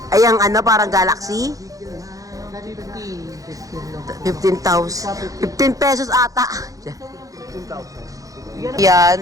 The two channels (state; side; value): late; left; 0.17 ms